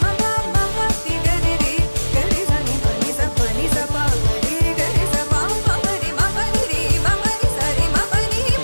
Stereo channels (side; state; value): both; inverted; correlation -1.00